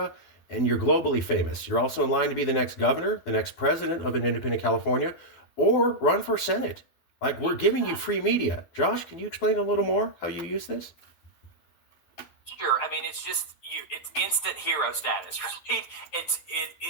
and you're globally famous. You're also in line to be the next governor, the next president of an independent California, or run for Senate. Like, we're giving you free media. Josh, can you explain a little more how you use this? Sure. I mean, it's just it's instant hero status, right?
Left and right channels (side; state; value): right; late; 12 ms